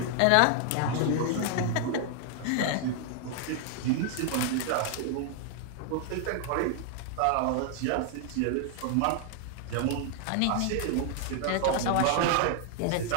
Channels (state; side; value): different; both; correlation 0.00